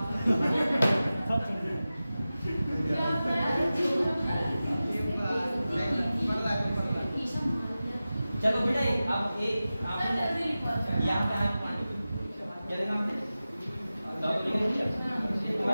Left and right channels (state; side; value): inverted; both; correlation -0.95